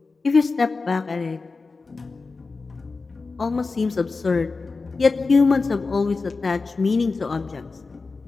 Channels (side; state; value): right; quieter; 4.1 dB